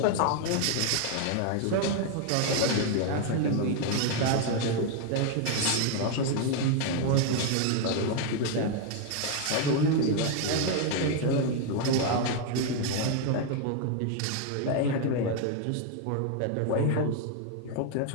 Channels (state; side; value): different; both; correlation 0.01